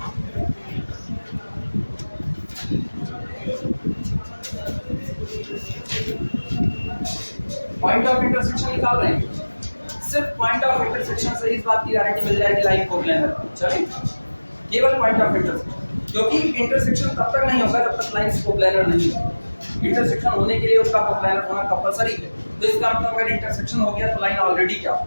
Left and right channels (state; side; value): inverted; both; correlation -1.00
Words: पॉइंट ऑफ इंटरसेक्शन निकाल रहे हैं, सिर्फ पॉइंट ऑफ इंटरसेक्शन से इस बात की गारंटी मिल जाएगी लाइन कोप्लेनर। चलिए केवल पॉइंट ऑफ इंटरसेक्शन, क्योंकि इंटरसेक्शन तब तक नहीं होगा जब तक लाइन कोप्लेनर नहीं है। इंटरसेक्शन होने के लिए उसका कोप्लेनर होना कंपलसरी है। तो इसका मतलब अगर इंटरसेक्शन हो गया तो लाइन ऑलरेडी क्या